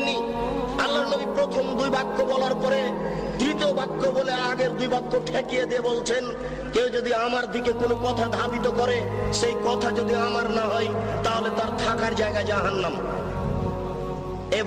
আল্লাহর নবী প্রথম দুই বাক্য বলার পরে তৃতীয় বাক্য বলে আগের দুই বাক্য ঠেকিয়ে দিয়ে বলছেন, কেউ যদি আমার দিকে কোনো কথা ধাবিত করে, সেই কথা যদি আমার না হয়, তাহলে তার থাকার জায়গা জাহান্নাম।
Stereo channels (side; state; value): both; identical; correlation 1.00